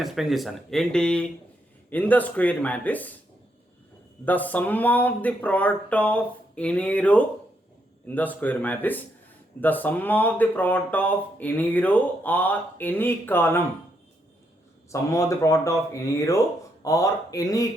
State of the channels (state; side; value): normal; both; correlation 0.78